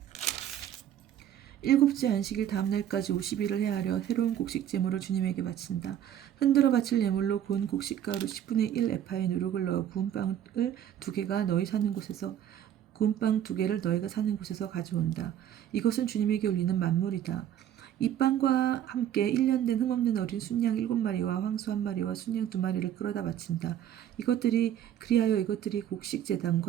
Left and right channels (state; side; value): quieter; left; 10.7 dB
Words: 일곱째 안식일 다음날까지 50일을 헤아려 새로운 곡식 제물을 주님에게 바친다. 흔들어 바칠 예물로 구운 곡식가루 10분의 1 에파에 누룩을 넣어 구운 빵 2개를 너희가 사는 곳에서 가져온다. 이것은 주님에게 올리는 만물이다. 이 빵과 함께 1년 된 흠없는 어린 순양 7마리와 황소 1마리와 순양 2마리를 끌어다 바친다. 그리하여 이것들이 곡식